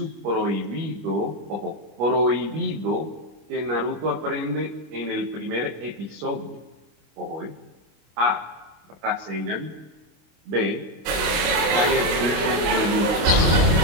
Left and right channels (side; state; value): left; late; 26 ms